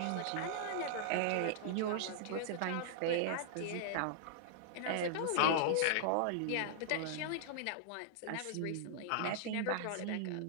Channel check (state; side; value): different; both; correlation -0.01